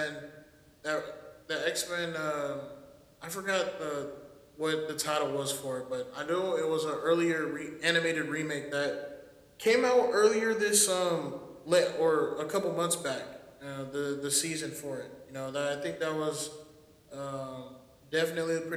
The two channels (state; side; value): identical; both; correlation 1.00